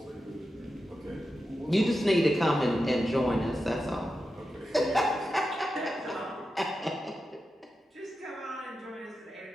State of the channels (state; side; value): normal; both; correlation 0.90